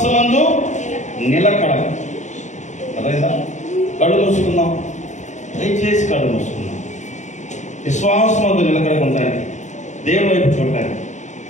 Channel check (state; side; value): late; right; 0.35 ms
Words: నిలకడ. అర్థమైందా? కళ్ళు మూసుకుందాం. దయచేసి కళ్ళు మూసుకుందాం. విశ్వాసమందు నిలకడగా ఉండడానికి, దేవుడి వైపు చూడటానికి